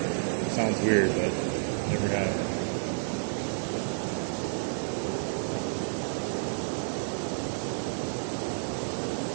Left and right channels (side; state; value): left; silent; digital silence